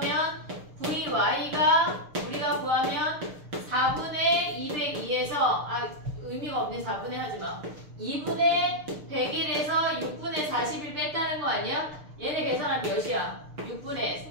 vy가 우리가 구하면 4분의 202에서 의미가 없네. 4분의 하지마. 2분의 101에서 6분의 41 뺐다는 거 아니야? 얘네 계산하면 몇이야? 6분의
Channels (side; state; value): left; late; 6.6 ms